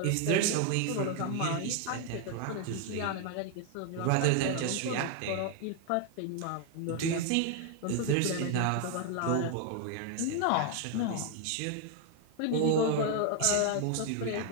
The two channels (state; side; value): different; both; correlation 0.00